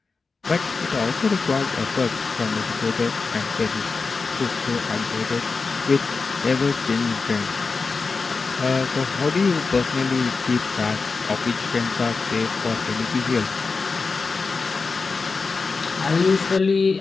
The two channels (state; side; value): quieter; right; 4.4 dB